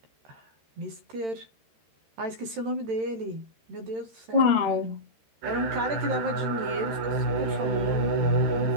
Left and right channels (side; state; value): left; late; 13 ms